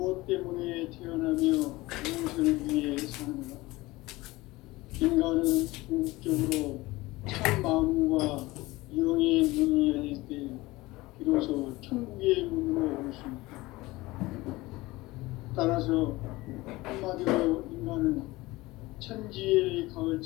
때문에 태어나며 무엇을 위해 사는가? 인간은 궁극적으로 참 마음과 영의 눈이 열릴 때 비로소 천국의 문으로 올 수 있다. 따라서 한마디로 인간은 천지의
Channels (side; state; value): right; quieter; 20.2 dB